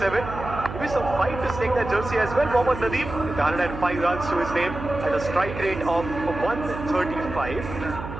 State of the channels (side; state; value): right; noise; hum, 9 dB below the sound